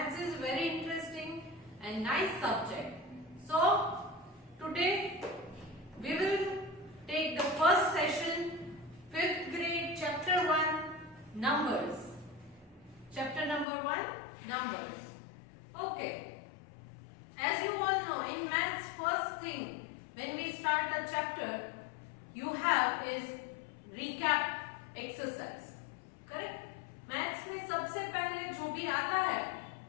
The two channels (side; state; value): right; drops out; at 13.7 s